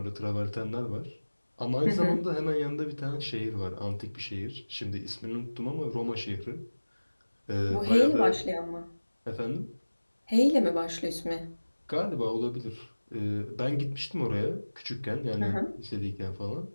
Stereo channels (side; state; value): both; inverted; correlation -1.00